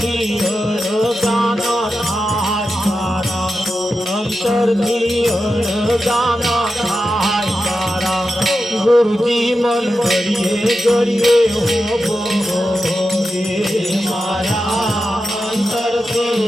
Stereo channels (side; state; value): both; normal; correlation 0.90